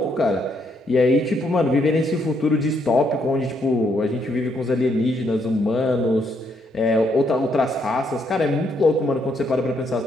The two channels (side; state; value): both; normal; correlation 0.74